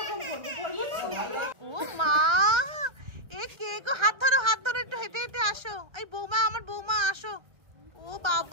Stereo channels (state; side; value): late; left; 1.4 ms